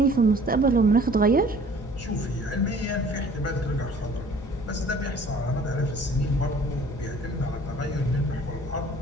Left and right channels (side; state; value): both; normal; correlation 0.52